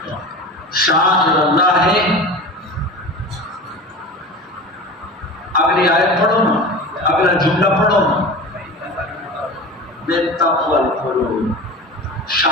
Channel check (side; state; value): both; normal; correlation 0.33